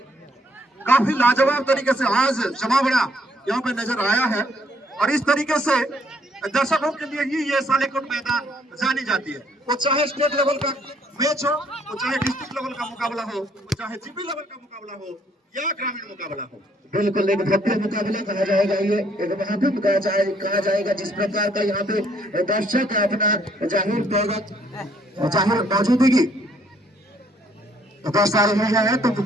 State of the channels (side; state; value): both; normal; correlation 0.66